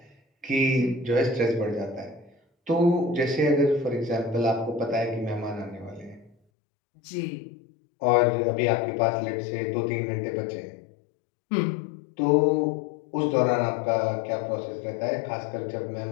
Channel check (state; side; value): drops out; right; at 6.4 s